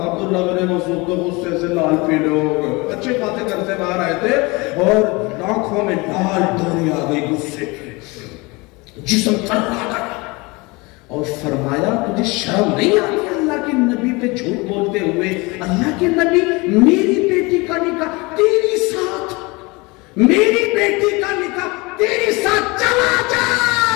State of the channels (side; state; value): right; quieter; 25.3 dB